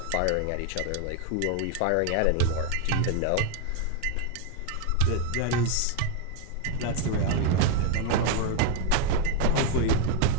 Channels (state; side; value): different; both; correlation 0.01